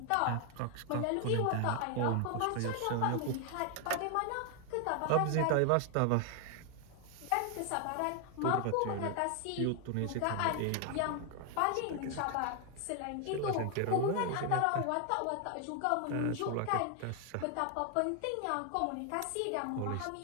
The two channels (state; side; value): different; both; correlation 0.00